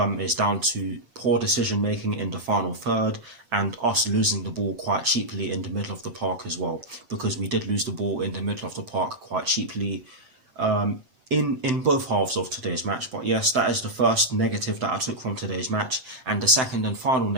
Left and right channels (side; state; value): left; late; 8.7 ms